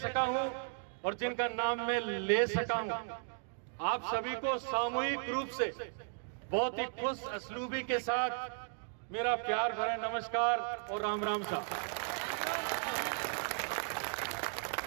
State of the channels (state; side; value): silent; left; 54 dB below the other